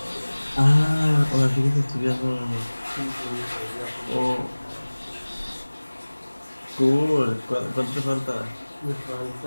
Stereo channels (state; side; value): inverted; both; correlation -1.00